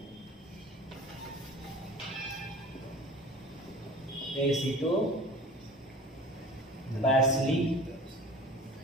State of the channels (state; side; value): normal; both; correlation 0.40